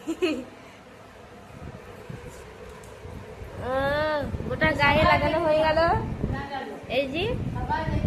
গোটা গায়ে লাগানো হয়ে গেল। এই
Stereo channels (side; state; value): both; identical; correlation 1.00